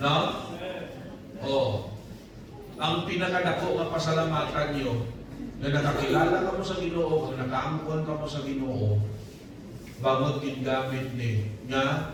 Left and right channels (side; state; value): both; identical; correlation 1.00